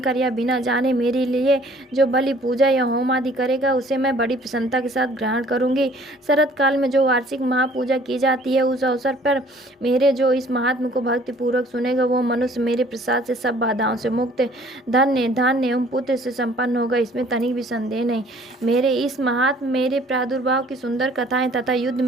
या बिना जाने मेरे लिए जो बलि, पूजा या होम आदि करेगा, उसे मैं बड़ी प्रसन्नता के साथ ग्रहण करूंगी। शरत काल में जो वार्षिक महापूजा की जाती है, उस अवसर पर मेरे जो इस महात्म को भक्ति पूर्वक सुनेगा, वो मनुष्य मेरे प्रसाद से सब बाधाओं से मुक्त, धन्य, धान्य एवं पुत्र से संपन्न होगा। इसमें तनिक भी संदेह नहीं। मेरे इस महात्म मेरे प्रादुर्भाव की सुंदर कथाएं तथा युद्ध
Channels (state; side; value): normal; both; correlation 0.55